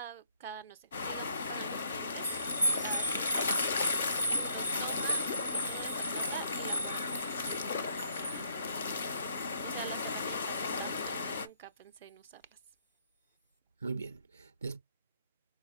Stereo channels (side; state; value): both; inverted; correlation -0.71